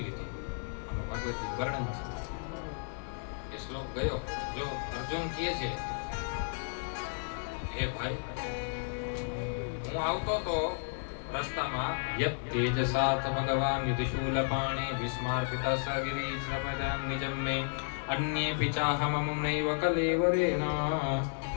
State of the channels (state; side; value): silent; right; 56 dB below the other